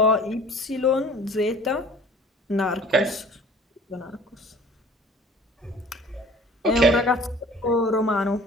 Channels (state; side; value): normal; both; correlation 0.48